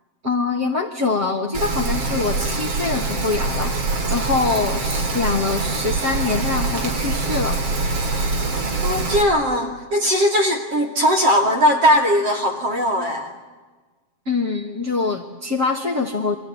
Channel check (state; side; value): late; left; 7.5 ms